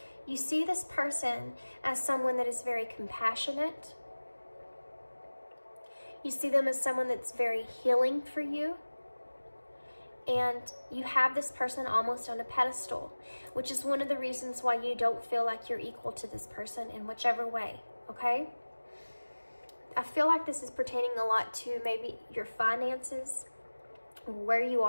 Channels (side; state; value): both; inverted; correlation -1.00